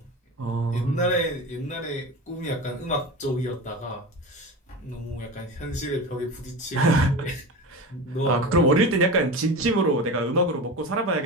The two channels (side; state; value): both; normal; correlation 0.27